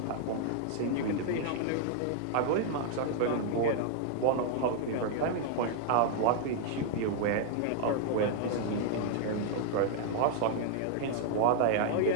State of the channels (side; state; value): both; different; correlation -0.01